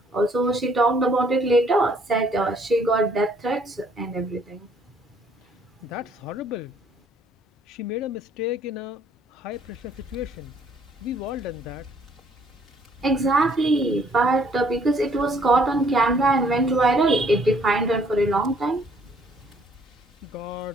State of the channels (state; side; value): normal; both; correlation 0.63